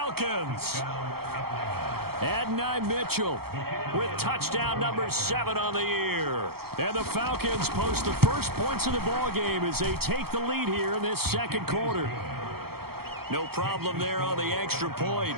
Adonai Mitchell with touchdown number 7 on the year. And the Falcons post the first points of the ball game as they take the lead here in this 2nd quarter. No problem there on the extra point.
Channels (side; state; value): left; late; 0.95 ms